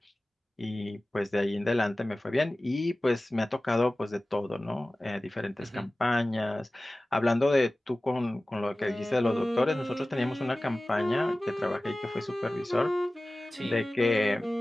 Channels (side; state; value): both; normal; correlation 0.97